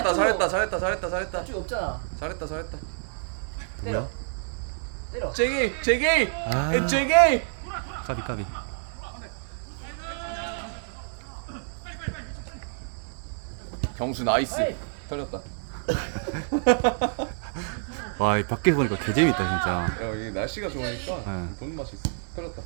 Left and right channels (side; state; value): left; silent; 57 dB below the other